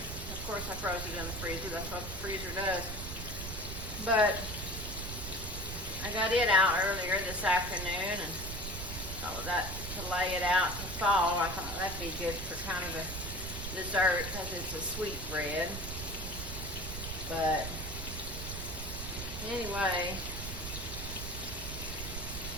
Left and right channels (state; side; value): noise; right; rumble, 7 dB below the sound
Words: of course I froze it in the freezer, that's what the freezer does. But I got it out earlier this afternoon and thought that to lay it out to fall, I thought that'd be good for kind of a dessert because it's a sweet bread. But anyway,